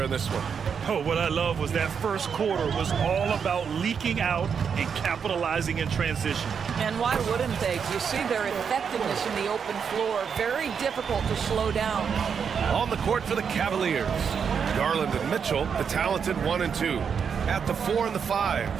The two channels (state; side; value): quieter; left; 6.8 dB